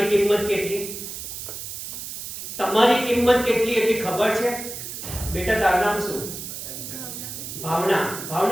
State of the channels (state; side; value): noise; right; hiss, 8 dB below the sound